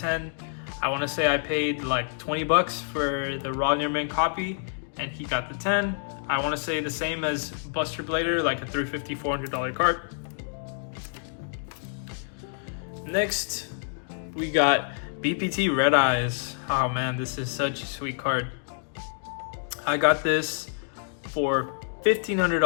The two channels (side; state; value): right; silent; digital silence